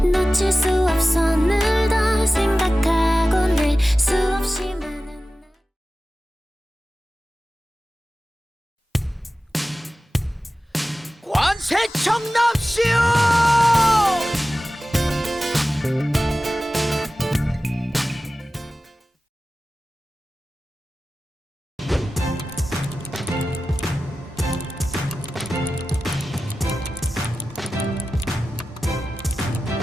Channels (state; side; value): normal; both; correlation 0.95